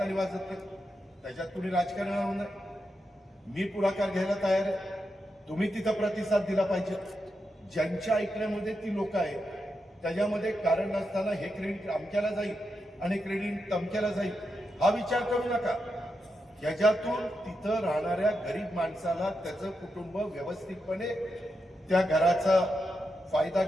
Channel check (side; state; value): both; normal; correlation 0.86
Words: वाजत नाही, त्याच्यात कुणी राजकारण नाही. मी पुढाकार घ्यायला तयार आहे, तुम्ही तिथं प्रतिसाद दिला पाहिजे. ज्यांच्या ऐकण्यामध्ये ती लोक आहेत, त्याच्यामध्ये कारण नसताना हे क्रेडिट अमक्याला जाईल आणि क्रेडिट तमक्याला जाईल हा विचार करू नका. याच्यातून तिथं राहणाऱ्या गरीब माणसाला त्याचं कुटुंब व्यवस्थितपणे त्या घराचा फायदा